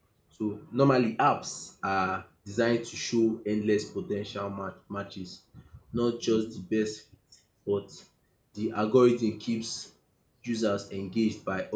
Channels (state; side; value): identical; both; correlation 1.00